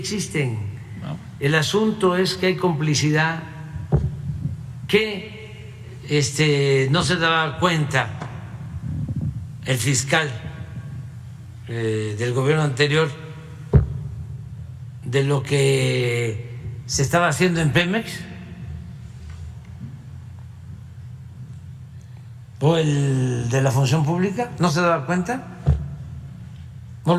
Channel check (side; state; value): both; identical; correlation 1.00